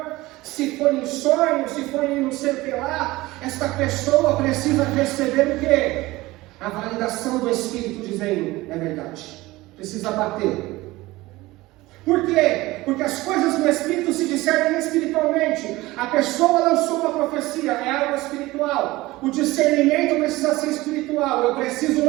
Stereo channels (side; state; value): left; quieter; 19.4 dB